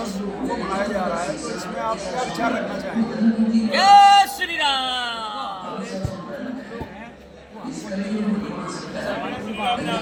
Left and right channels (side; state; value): both; identical; correlation 1.00